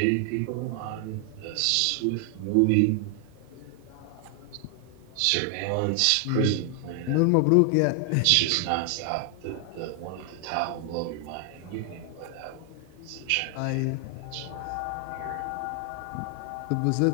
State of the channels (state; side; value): different; both; correlation 0.00